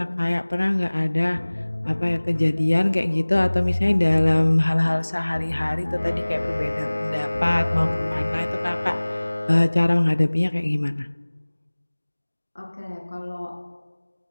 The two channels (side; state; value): both; inverted; correlation -1.00